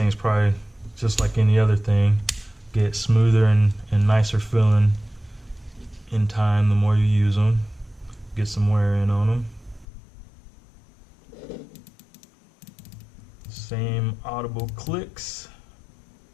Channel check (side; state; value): right; drops out; at 9.9 s